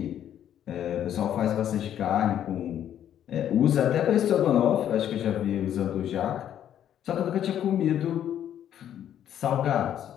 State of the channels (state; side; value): quieter; right; 10.4 dB